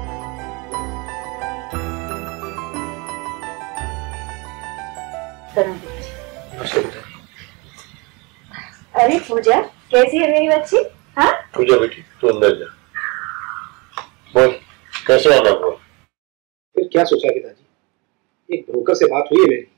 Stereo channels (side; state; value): left; quieter; 28.1 dB